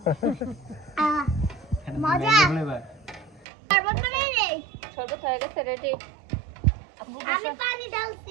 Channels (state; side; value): drops out; left; at 3.5 s